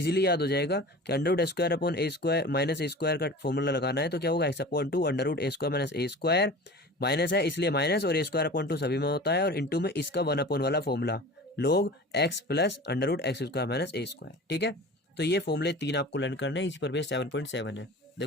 याद हो जाएगा कि √x² माइनस ए स्क्वायर का फॉर्मूला लगाना है, तो क्या होगा x/2 √a² minus A square, minus है इसलिए माइनस, और a²/2 सभी में होता है, और इंटू में इसका 1/ वाला formula log x plus √x² minus A square. ठीक है, तो ये फॉर्मूले 3 आपको लर्न करने हैं, इसी पर बेस 7.7 है।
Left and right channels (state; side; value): normal; both; correlation 0.37